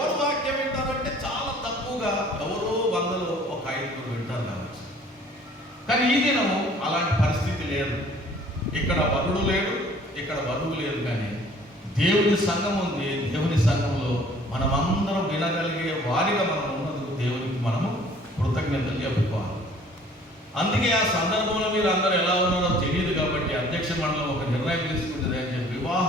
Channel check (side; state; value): both; normal; correlation 0.54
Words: వాక్యం వింటారంటే చాలా తక్కువగా, ఎవరో 100లో ఒక 5 వింటారు కావచ్చు. కానీ ఈ దినము అలాంటి పరిస్థితి లేదు. ఇక్కడ వరుడు లేడు, ఇక్కడ వధువు లేదు, కానీ దేవుని సంఘం ఉంది. దేవుని సంఘంలో మనమందరం వినగలిగే వారిగా మనం ఉన్నందుకు దేవునికి మనము కృతజ్ఞతలు చెప్పుకోవాలి. అందుకే ఆ సందర్భంలో మీరు అందరూ ఎలా ఉన్నారో తెలియదు కాబట్టి అధ్యక్ష మండలం ఒక నిర్ణయం తీసుకుంటుంది అని చెప్పి